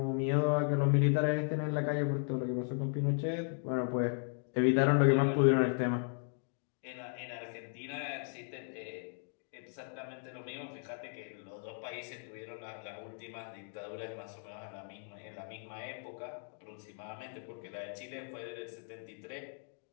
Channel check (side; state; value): right; silent; 54 dB below the other